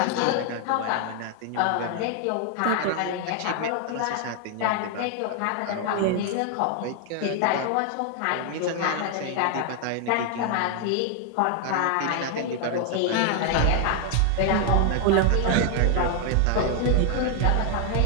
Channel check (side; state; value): both; different; correlation 0.00